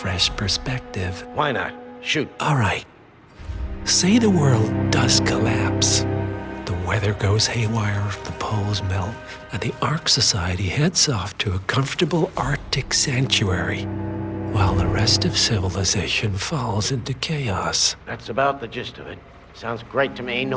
perspective. Why not? Shoot. All right. Say the world does collapse. The weather goes haywire, the poles melt, and the Ark Society heads off to a comfortable Arctic sanctuary, while the rest of civilization falls into chaos. That's about the gist of it. Sounds great to me.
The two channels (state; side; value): identical; both; correlation 1.00